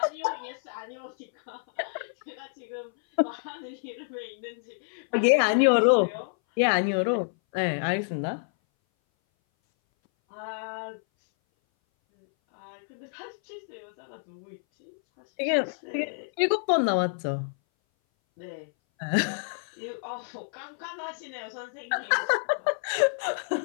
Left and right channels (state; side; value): silent; right; 58 dB below the other